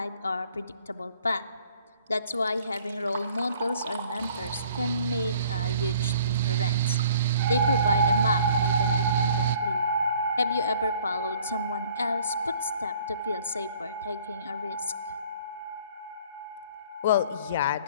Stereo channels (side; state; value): both; inverted; correlation -0.55